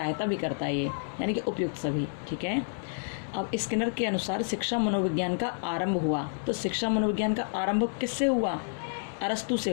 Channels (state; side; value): silent; right; 57 dB below the other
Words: भी करता है ये, यानी कि उपयुक्त सभी, ठीक है। अब स्किनर के अनुसार शिक्षा मनोविज्ञान का आरंभ हुआ। तो शिक्षा मनोविज्ञान का आरंभ किससे हुआ? अरस्तु से